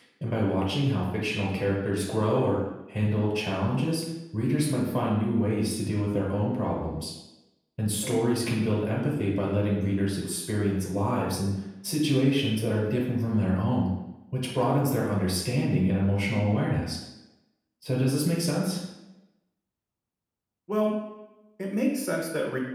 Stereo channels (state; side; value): identical; both; correlation 1.00